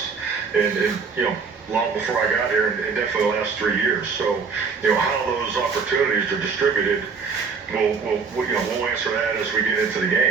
and long before I got here, and definitely the last 3 years. So, how those opportunities are distributed, we'll answer that as we get into the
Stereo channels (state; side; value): quieter; left; 5.3 dB